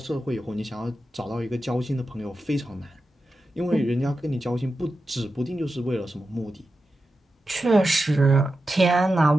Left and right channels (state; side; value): normal; both; correlation 0.91